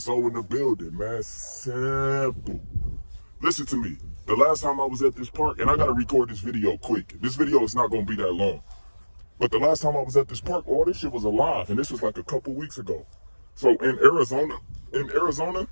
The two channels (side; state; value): both; inverted; correlation -1.00